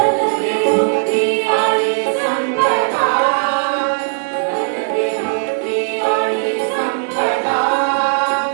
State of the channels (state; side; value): silent; left; 68 dB below the other